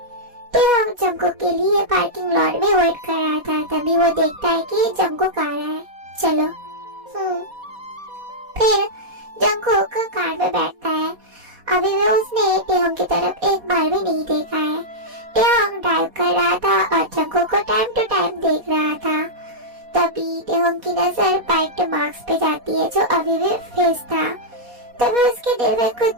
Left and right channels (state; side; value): late; left; 4.1 ms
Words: टेहोंग जंगकुक के लिए पार्किंग लॉट में वेट कर रहा था, तभी वो देखता है कि जंगकुक आ रहा है। चलो। फिर जंगकुक कार में बैठता है। अभी भी उसने टेहोंग की तरफ एक बार भी नहीं देखा है। टेहोंग ड्राइव कर रहा था और जंगकुक को टाइम टू टाइम देख रहा था। तभी टेहोंग की नजर बाइट मार्क्स पे जाती है जो अभी भी फेस था। तभी उसके दिल में